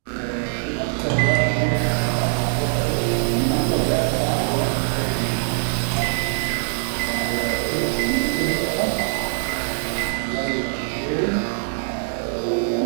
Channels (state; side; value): silent; left; digital silence